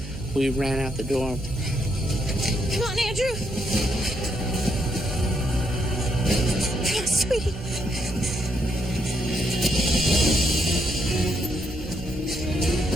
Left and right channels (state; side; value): noise; right; hum, 12 dB below the sound